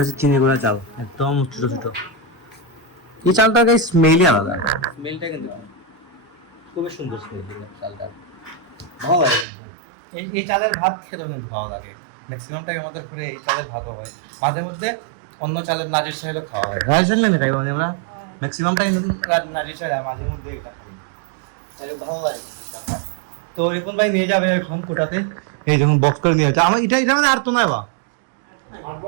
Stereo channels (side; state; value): left; drops out; at 9.5 s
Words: হচ্ছে চিনি গুঁড়া চাল, একদম ছোট ছোট। এই চালটা গাইস স্মেলই আলাদা, স্মেলটা কিন্তু খুবই সুন্দর স্মেল চালটা, ভালো লাগে। এই চালের ভাত খেতেও কিন্তু ভালো লাগে। ম্যাক্সিমাম টাইম আমাদের ঘরে এই চালের ভাতও হয়, মাঝে মধ্যে অন্য চালের নাজির চাইলেও খাওয়া হয়। নাজির চাল না খাই মানে আমরা ম্যাক্সিমাম টাইম নাজির চাল, মাঝে মধ্যে এটা খাই, ভালো লাগে। তো রিপন ভাই নিয়ে যাবে এখন কুটাতে, এই যখন বক্স করে নিয়ে যাচ্ছে আমার এটা মানে আর তো নয় বা